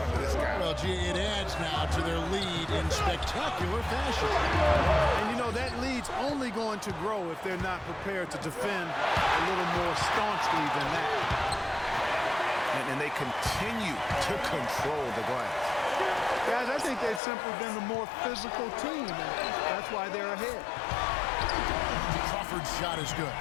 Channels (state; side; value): drops out; right; at 17.2 s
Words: of this guy. Well, gee, it adds now to their lead in spectacular fashion. And you know, that lead's only going to grow if they're not prepared to defend a little more staunchly than that. And they continue to control the glass. Guys, I think they've simply been the more physical team, and that's why they're ahead. Crawford's shot is good.